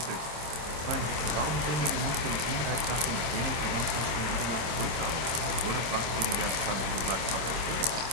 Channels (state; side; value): late; left; 26 ms